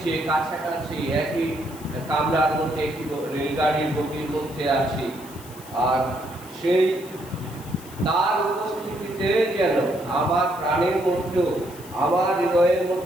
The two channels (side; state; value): left; noise; hiss, 19 dB below the sound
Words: কাছাকাছি, একই কামরার মধ্যে, একটি রেলগাড়ির বগির মধ্যে আছি। আর সেই তার উপস্থিতিতে যেন আমার প্রাণের মধ্যেও, আমার হৃদয়ের